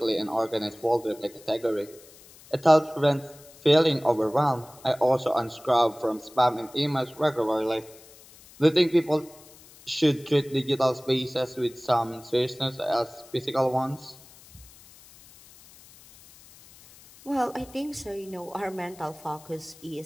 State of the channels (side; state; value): left; noise; hiss, 23 dB below the sound